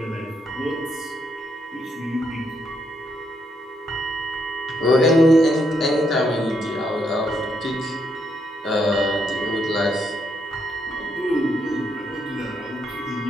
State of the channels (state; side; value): normal; both; correlation 0.77